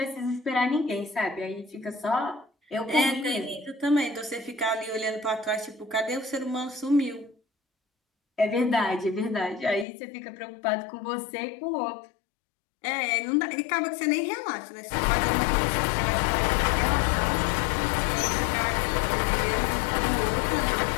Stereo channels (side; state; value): right; drops out; at 9.9 s